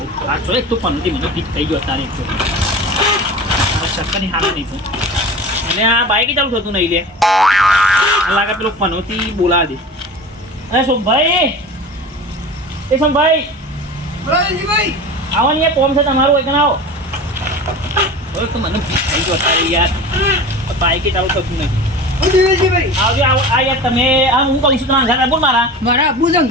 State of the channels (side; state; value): both; normal; correlation 0.34